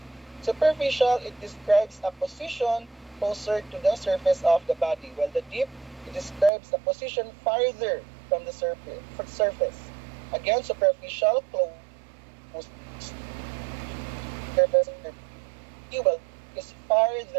Superficial, it describes a position closer to the surface of the body, while the deep, it describes a position farther from the surface. Again, superficial, close surface of the body, well, is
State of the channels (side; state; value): left; drops out; at 6.5 s